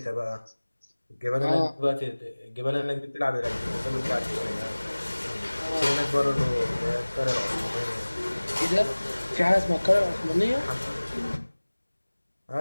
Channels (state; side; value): inverted; both; correlation -1.00